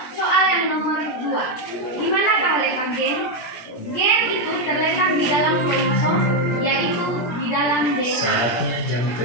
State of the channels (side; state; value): right; late; 17 ms